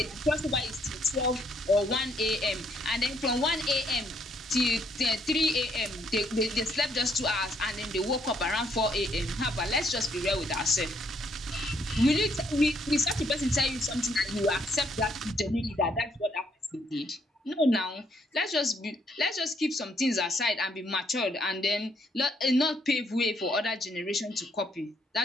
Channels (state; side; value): normal; both; correlation 0.70